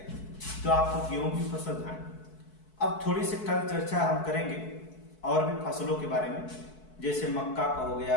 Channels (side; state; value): right; late; 4.6 ms